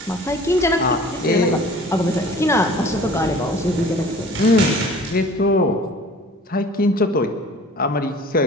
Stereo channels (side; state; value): both; normal; correlation 0.47